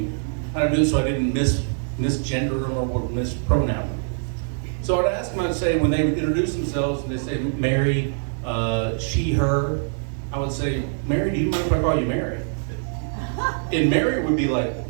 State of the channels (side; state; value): left; silent; 57 dB below the other